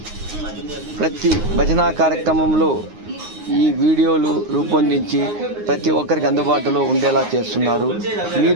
ప్రతి భజనా కార్యక్రమంలో ఈ వీడియోలు రూపొందించి ప్రతి ఒక్కరికి అందుబాటులో ఉండేలా చేస్తున్నారు.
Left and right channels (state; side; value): late; left; 9.6 ms